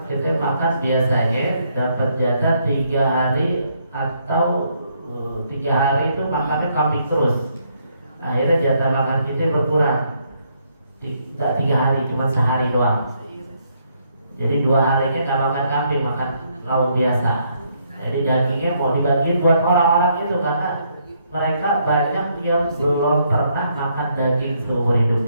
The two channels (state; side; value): inverted; both; correlation -0.73